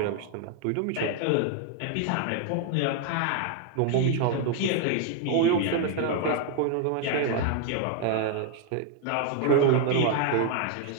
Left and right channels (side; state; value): both; different; correlation 0.00